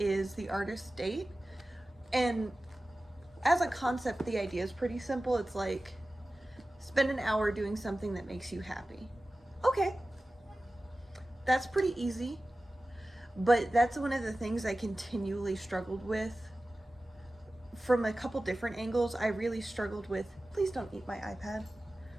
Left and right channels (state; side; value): normal; both; correlation 0.96